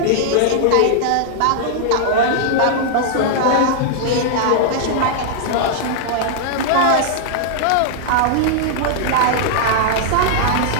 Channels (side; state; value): both; different; correlation -0.01